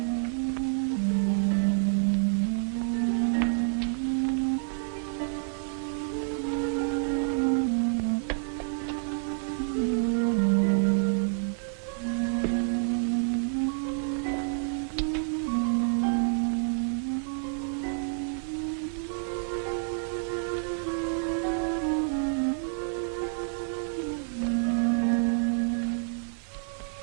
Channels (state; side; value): silent; left; digital silence